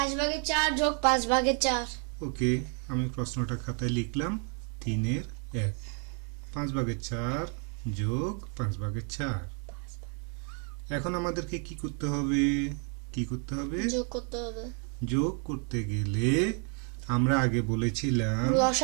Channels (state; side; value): quieter; left; 40.0 dB